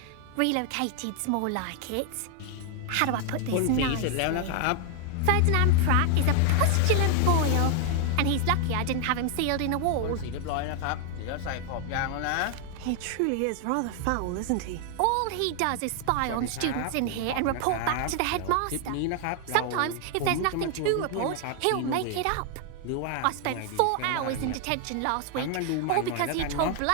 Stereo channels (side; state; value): both; different; correlation 0.00